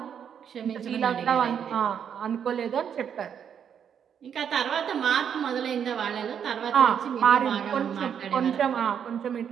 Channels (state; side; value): quieter; left; 8.1 dB